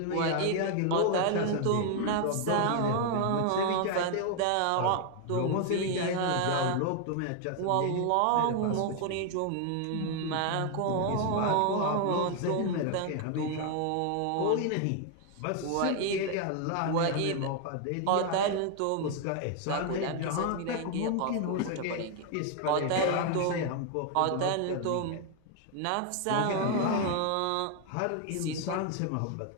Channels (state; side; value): different; both; correlation 0.00